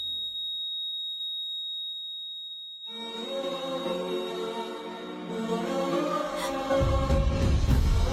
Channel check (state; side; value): identical; both; correlation 1.00